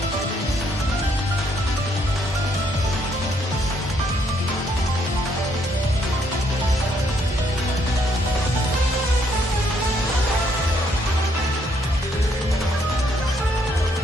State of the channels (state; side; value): normal; both; correlation 0.70